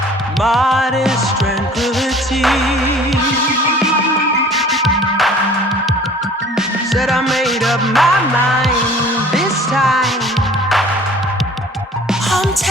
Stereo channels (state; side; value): normal; both; correlation 0.49